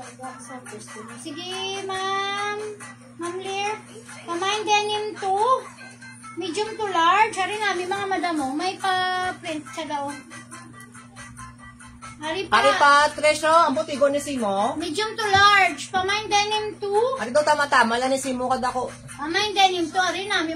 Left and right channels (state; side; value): identical; both; correlation 1.00